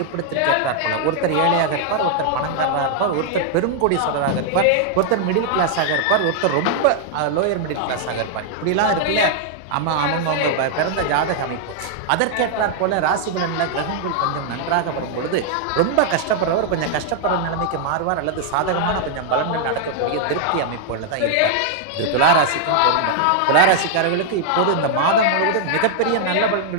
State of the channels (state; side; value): different; both; correlation 0.00